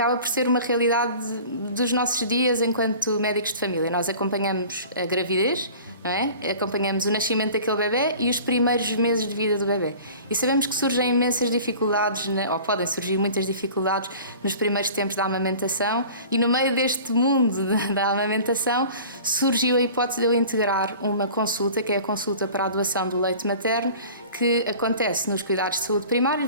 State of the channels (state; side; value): inverted; both; correlation -0.43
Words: por ser uma realidade dos nossos dias enquanto médicos de família. Nós acompanhamos a gravidez, não é? Acompanhamos o nascimento daquele bebê e os primeiros meses de vida do bebê. E sabemos que surgem imensas dificuldades, ou podem surgir muitas dificuldades nos primeiros tempos da amamentação e no meio deste mundo da amamentação surgiu a hipótese de eu integrar uma consulta, que é a consulta para a doação do leite materno, que acontece nos cuidados de saúde